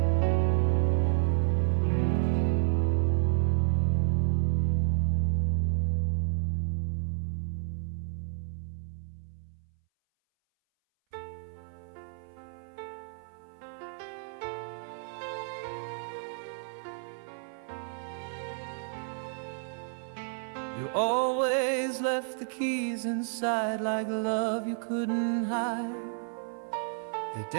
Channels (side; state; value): left; silent; 57 dB below the other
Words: You always left the keys inside, like love you couldn't hide. They